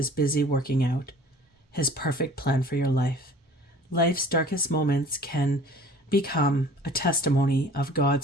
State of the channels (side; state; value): both; normal; correlation 0.48